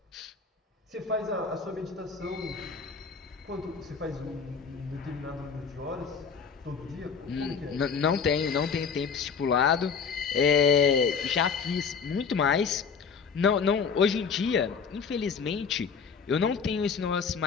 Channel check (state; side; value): quieter; right; 5.9 dB